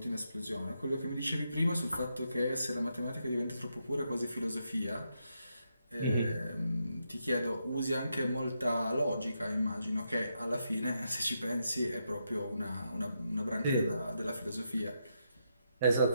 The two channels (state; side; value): inverted; both; correlation -0.82